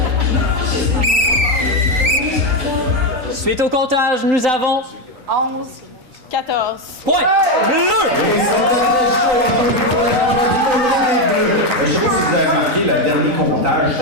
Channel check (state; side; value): late; left; 3.9 ms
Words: Suite au comptage, nous avons 11, 14. point bleu. Et c'était très chaud encore une fois du côté des Bleus. Je sais pas si vous avez remarqué, le dernier comptage,